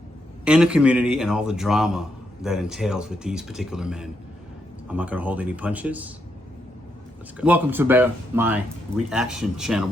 in the community and all the drama that entails with these particular men. I'm not going to hold any punches. Let's go. Welcome to my reaction channel,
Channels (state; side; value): normal; both; correlation 0.80